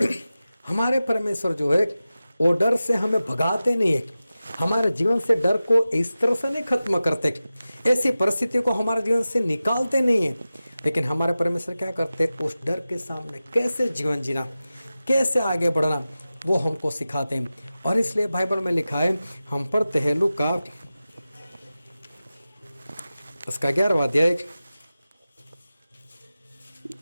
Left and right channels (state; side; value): inverted; both; correlation -0.95